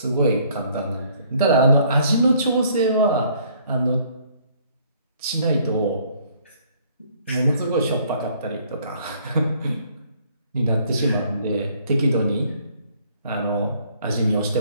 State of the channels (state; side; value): inverted; both; correlation -0.62